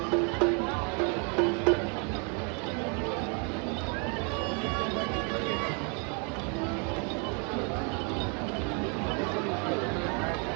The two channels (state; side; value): quieter; left; 36.4 dB